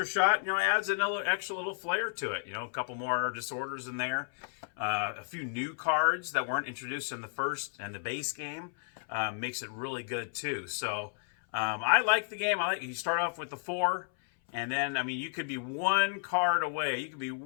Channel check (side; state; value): right; silent; 56 dB below the other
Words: shot, adds another extra little flair to it. A couple more disorders in there. A few new cards that weren't introduced in the first and the base game makes it really good too. So I like the game. You start off with the 4, and then, I mean, you could be one card away. You could be